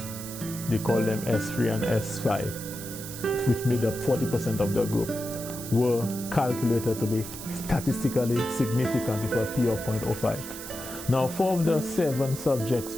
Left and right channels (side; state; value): right; noise; hiss, 11 dB below the sound